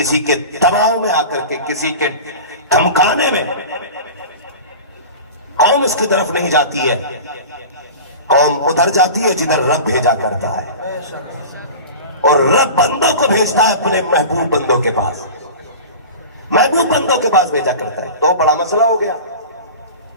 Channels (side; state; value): both; inverted; correlation -0.34